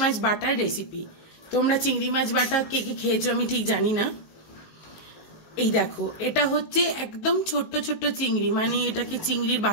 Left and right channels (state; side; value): late; right; 19 ms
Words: মাছ বাটার রেসিপি। তোমরা চিংড়ি মাছ বাটা কে কে খেয়েছো আমি ঠিক জানি না। এই দেখো, এটা হচ্ছে একদম ছোট্ট ছোট্ট চিংড়ি, মানে এটাকে চিংড়ির